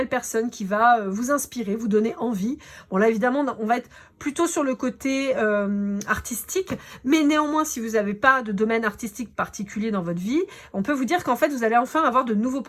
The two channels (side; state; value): both; identical; correlation 1.00